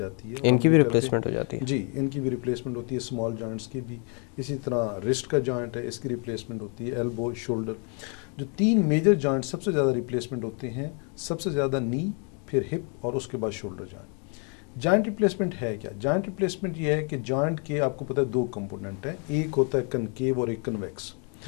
ہے. ان کی بھی ریپلیسمنٹ ہو جاتی ہے؟ جی، ان کی بھی ریپلیسمنٹ ہوتی ہے، اسمال جوائنٹس کی بھی. اسی طرح رسٹ کا جوائنٹ ہے، اس کی ریپلیسمنٹ ہوتی ہے. ایلبو، شولڈر، جو 3 میجر جوائنٹ سب سے زیادہ ریپلیسمنٹ ہوتے ہیں، سب سے زیادہ نی، پھر ہپ اور اس کے بعد شولڈر جوائنٹ. جوائنٹ ریپلیسمنٹ ہے کیا؟ جوائنٹ ریپلیسمنٹ یہ ہے کہ جوائنٹ کے آپ کو پتہ ہے 2 کمپوننٹ ہیں. ایک ہوتا ہے کنکیو اور ایک کنویکس.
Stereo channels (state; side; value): quieter; right; 38.6 dB